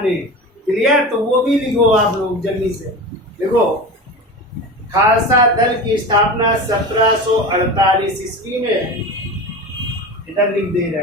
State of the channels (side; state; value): both; normal; correlation 0.29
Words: ने। क्लियर? तो वो भी लिखो आप लोग जल्दी से। देखो, खालसा दल की स्थापना 1748 ईस्वी में, इधर लिख दे रहे